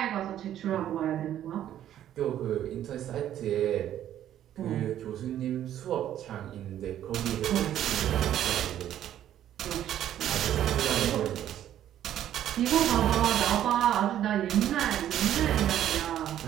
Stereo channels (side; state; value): left; quieter; 11.4 dB